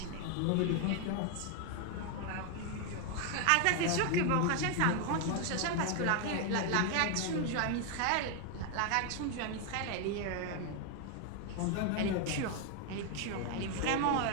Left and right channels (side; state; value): both; different; correlation 0.01